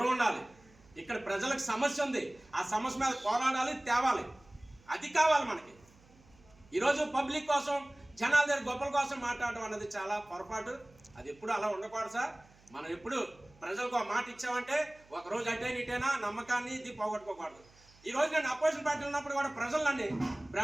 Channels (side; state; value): right; noise; hum, 28 dB below the sound